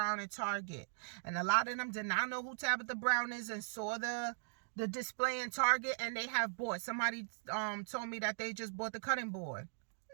at Target, and a lot of them did not know who Tabitha Brown is and saw the display in Target, and they have bought. Somebody told me that they just bought the cutting board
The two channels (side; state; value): left; silent; digital silence